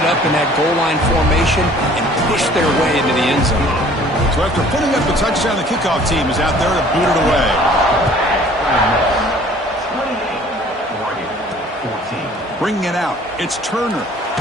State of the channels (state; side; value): normal; both; correlation 0.53